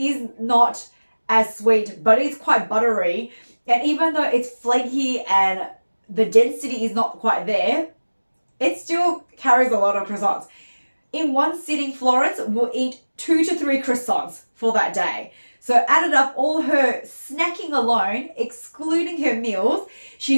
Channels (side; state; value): both; inverted; correlation -1.00